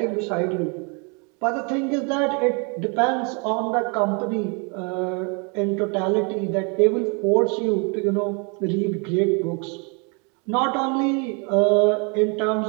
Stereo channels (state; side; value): quieter; left; 34.3 dB